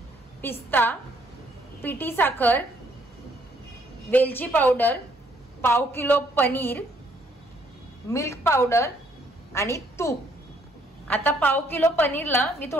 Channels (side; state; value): both; normal; correlation 0.67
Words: पिस्ता, पिठी साखर, वेलची पावडर, पाव किलो पनीर, मिल्क पावडर आणि तूप। आता पाव किलो पनीरला मी